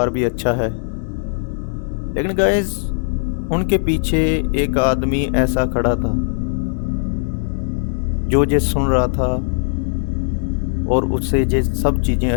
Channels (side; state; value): right; silent; digital silence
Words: भी अच्छा है। लेकिन गाइस उनके पीछे एक आदमी ऐसा खड़ा था जो ये सुन रहा था और उससे ये सब चीज़ें